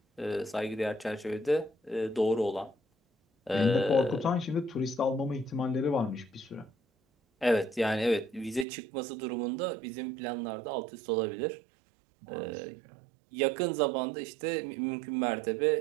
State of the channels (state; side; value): drops out; left; at 8.7 s